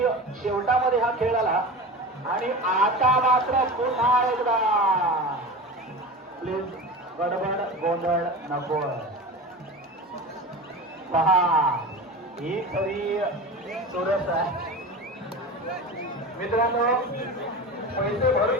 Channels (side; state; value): both; normal; correlation 0.30